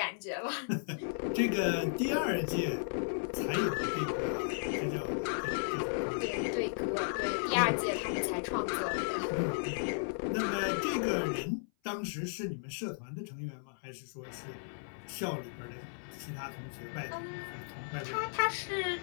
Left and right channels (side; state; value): right; silent; 54 dB below the other